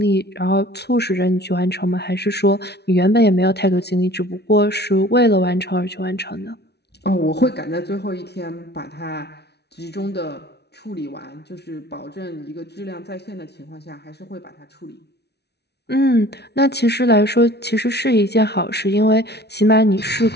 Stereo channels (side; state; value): right; late; 0.49 ms